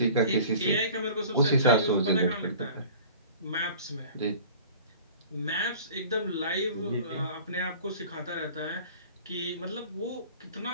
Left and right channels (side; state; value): both; inverted; correlation -0.44